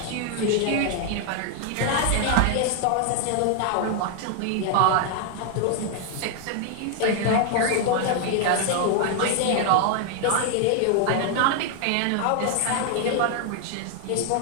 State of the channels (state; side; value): different; both; correlation 0.00